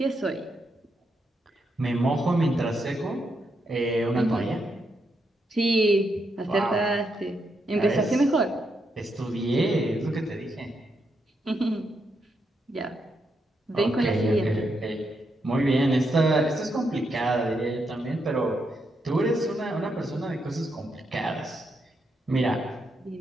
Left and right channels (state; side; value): normal; both; correlation 0.81